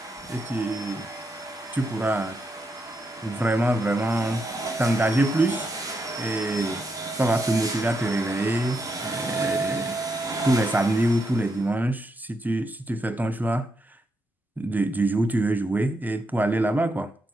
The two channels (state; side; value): normal; both; correlation 0.82